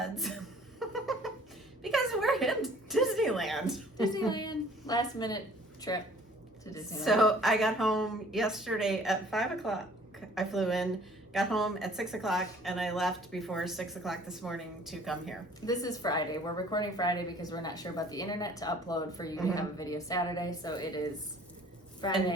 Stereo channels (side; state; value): both; normal; correlation 0.53